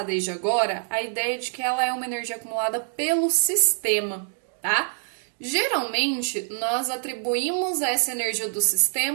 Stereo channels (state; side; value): silent; left; digital silence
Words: desde agora a ideia de que ela é uma energia acumulada pelo sistema, tá? Geralmente, nós atribuímos essa energia do